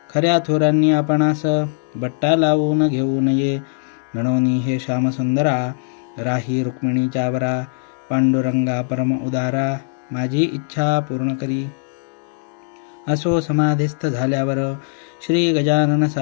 खऱ्या थोरांनी आपणास, बट्टा लावून घेऊ नये. गणोनी हे श्यामसुंदरा, राही रुक्मिणीच्या वरा. पांडुरंगा परम उदारा, माझी इच्छा पूर्ण करी. असो समाधिस्थ झाल्यावर, श्री गजानन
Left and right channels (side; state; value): right; silent; digital silence